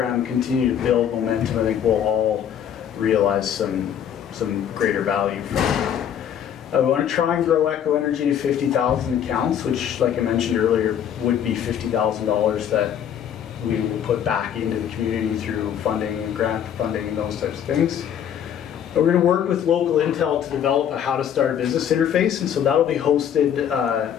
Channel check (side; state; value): right; quieter; 9.2 dB